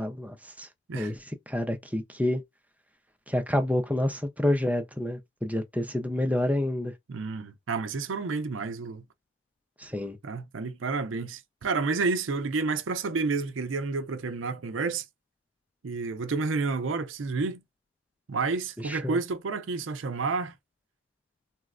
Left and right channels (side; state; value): both; normal; correlation 0.54